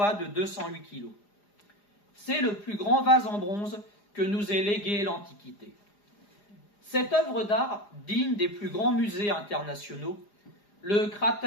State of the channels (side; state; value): right; late; 4.9 ms